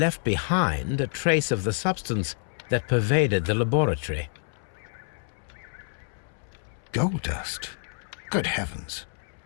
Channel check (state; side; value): silent; right; 60 dB below the other